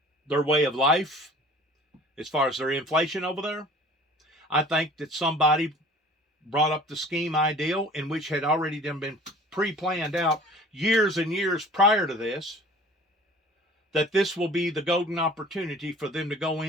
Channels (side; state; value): both; normal; correlation 0.47